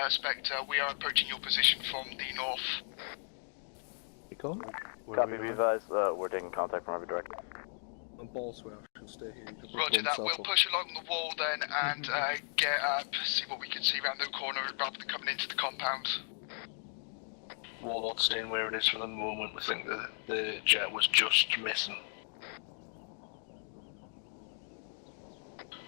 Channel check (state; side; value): silent; right; 54 dB below the other